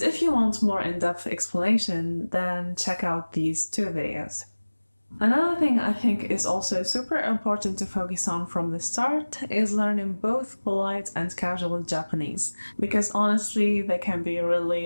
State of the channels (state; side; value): inverted; both; correlation -1.00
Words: if you want more in-depth explanation, then check out these 2 videos. Another thing I think is also super important to focus on from the start is learning both polite and casual Japanese, because honestly, they can be